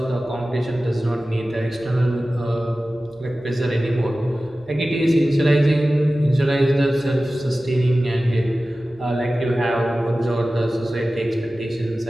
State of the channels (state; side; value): noise; right; rumble, 29 dB below the sound